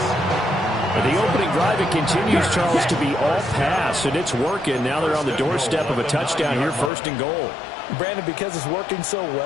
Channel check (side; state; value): right; drops out; at 6.9 s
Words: The opening drive, it continues, Charles, to be all pass, and it's working. Now they're on the doorstep of a touchdown here, 1st and goal. Brandon, because it's working so